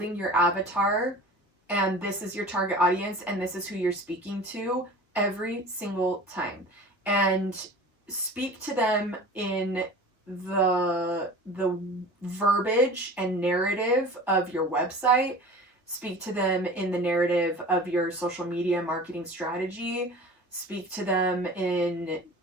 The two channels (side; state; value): both; normal; correlation 0.39